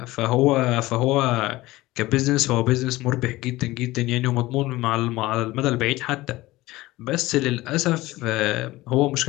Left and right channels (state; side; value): quieter; right; 18.6 dB